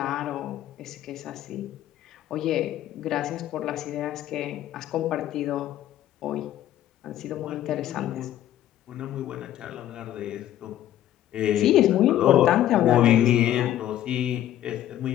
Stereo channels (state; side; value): quieter; right; 12.4 dB